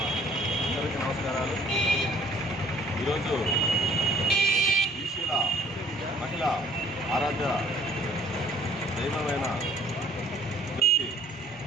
నమస్కారాలు. ఈరోజు బీసీల మహిళ ఆరాధ్య దైవమైన జ్యోతి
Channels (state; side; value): normal; both; correlation 0.57